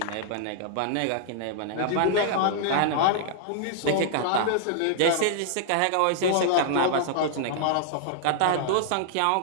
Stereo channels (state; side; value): different; both; correlation -0.01